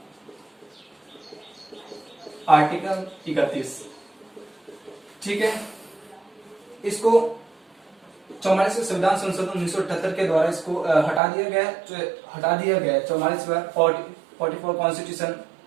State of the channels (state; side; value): drops out; left; at 11.2 s